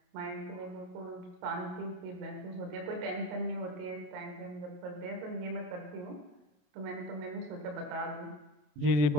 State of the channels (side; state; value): left; late; 28 ms